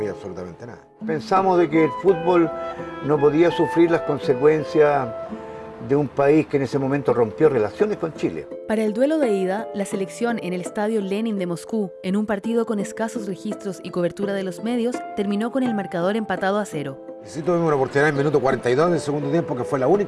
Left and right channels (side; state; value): both; identical; correlation 1.00